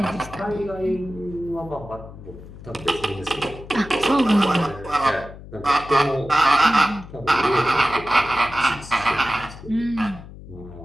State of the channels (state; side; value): noise; left; hum, 16 dB below the sound